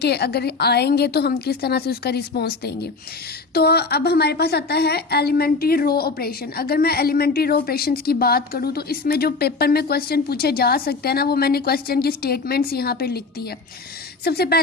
अगर आएंगे तो हम किस तरह से उसका रिस्पॉन्स देंगे। तो अब हमारे पास आता है एलिमेंट्री रो ऑपरेशन। अगर मैं एलिमेंट्री रो ऑपरेशन की बात करूँ तो इसमें जो पेपर में क्वेश्चन पूछे जा सकते हैं ना, वो मैंने क्वेश्चन की स्टेटमेंट्स यहाँ पे लिख दी है। सबसे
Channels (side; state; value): right; quieter; 4.0 dB